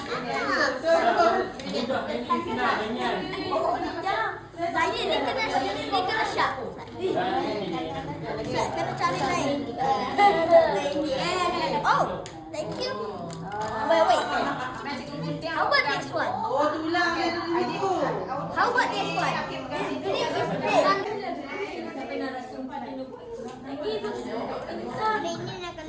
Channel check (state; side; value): identical; both; correlation 1.00